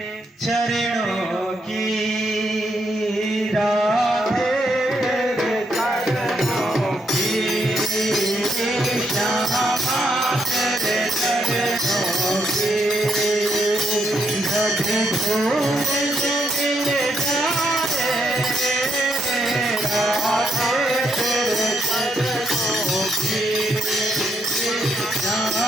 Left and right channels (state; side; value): normal; both; correlation 0.76